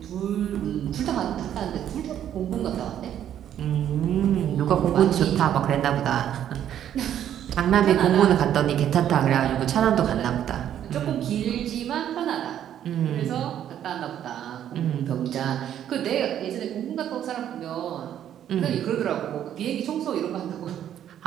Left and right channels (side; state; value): left; quieter; 10.5 dB